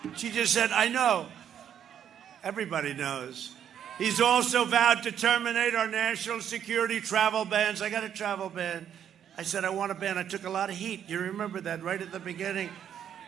She just said, I know. Everybody knows. He's also vowed to terminate our national security travel bans. I got a travel ban. I said, I want a ban. I took a lot of heat. You remember that right at the beginning.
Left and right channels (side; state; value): left; quieter; 9.3 dB